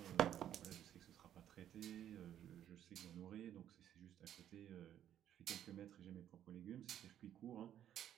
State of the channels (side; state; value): left; quieter; 10.7 dB